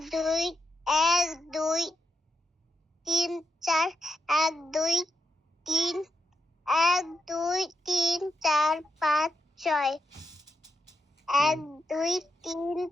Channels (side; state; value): both; normal; correlation 0.83